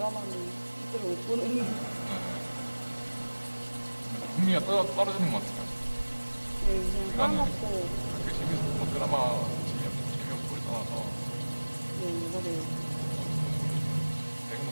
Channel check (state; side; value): inverted; both; correlation -1.00